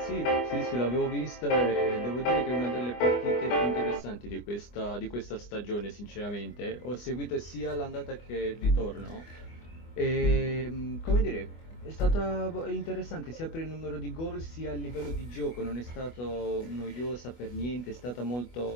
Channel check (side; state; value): right; late; 24 ms